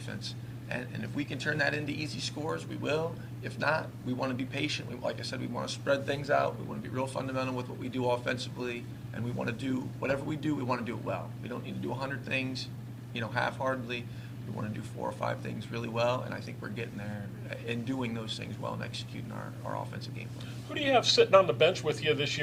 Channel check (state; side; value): identical; both; correlation 1.00